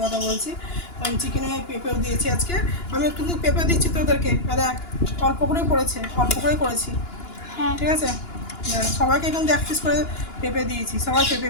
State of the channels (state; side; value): late; right; 2.9 ms